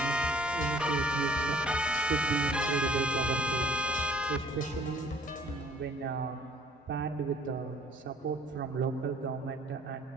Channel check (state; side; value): normal; both; correlation 0.57